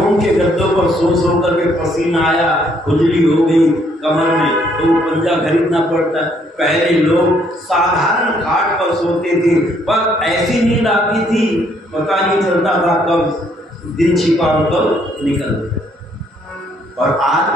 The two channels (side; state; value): both; normal; correlation 0.68